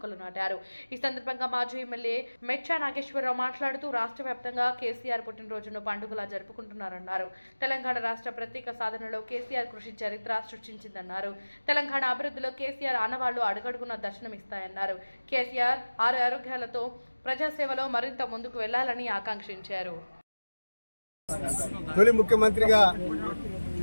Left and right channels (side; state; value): both; inverted; correlation -1.00